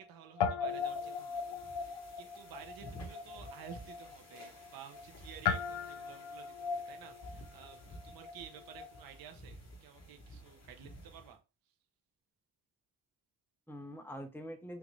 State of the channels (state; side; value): quieter; right; 4.6 dB